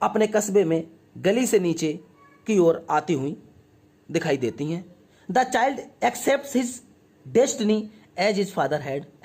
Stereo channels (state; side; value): identical; both; correlation 1.00